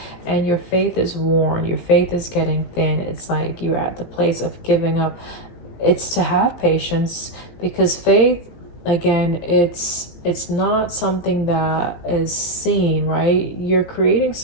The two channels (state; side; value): late; right; 18 ms